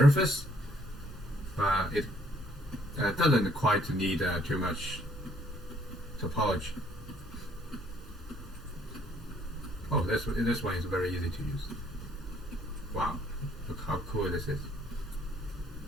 but it doesn't quite need too much topology. Oh, this one is very easy to use. Wow, look how cool this is.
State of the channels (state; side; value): normal; both; correlation 0.63